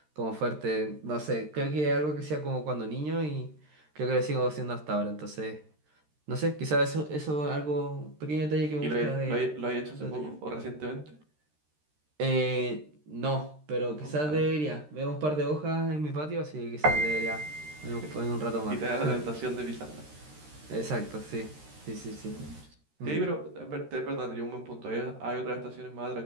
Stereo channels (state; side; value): late; left; 13 ms